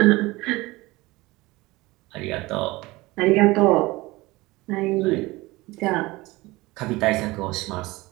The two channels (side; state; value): left; quieter; 21.0 dB